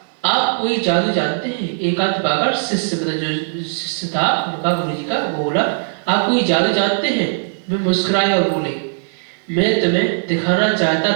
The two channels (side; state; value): left; silent; digital silence